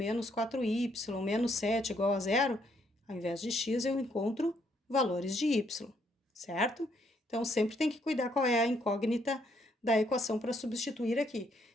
4y menos 7 igual a 0, ao invés de x eu encontro valores de y, certo? Então, sempre tem que cuidar qual é a incógnita da equação para substituir aqui.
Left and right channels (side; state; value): both; normal; correlation 0.71